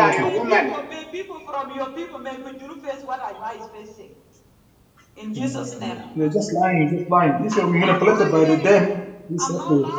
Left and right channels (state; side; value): identical; both; correlation 1.00